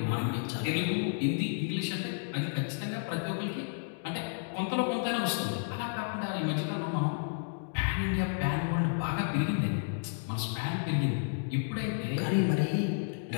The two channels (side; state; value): right; silent; digital silence